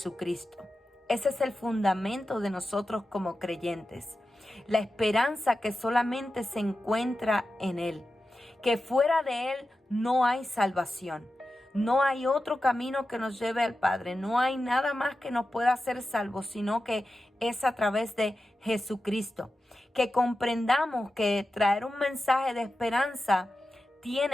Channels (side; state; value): both; normal; correlation 0.92